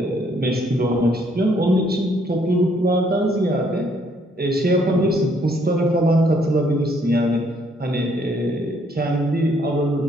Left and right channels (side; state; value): both; normal; correlation 0.67